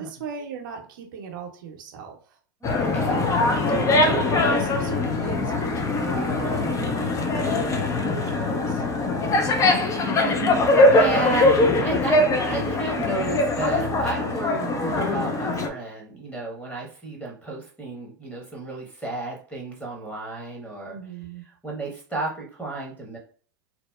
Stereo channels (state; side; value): normal; both; correlation 0.24